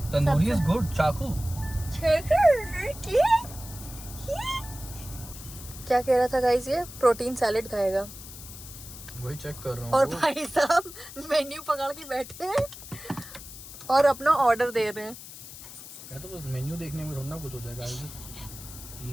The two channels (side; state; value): left; noise; hiss, 14 dB below the sound